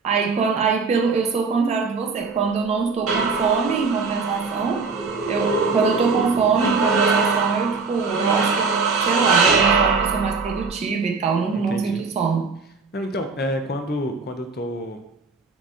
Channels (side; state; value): left; quieter; 4.5 dB